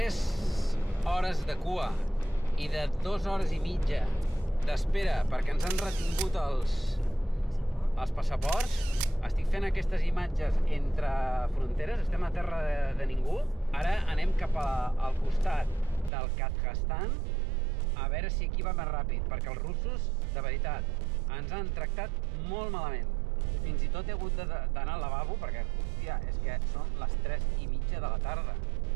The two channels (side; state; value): left; drops out; at 16.1 s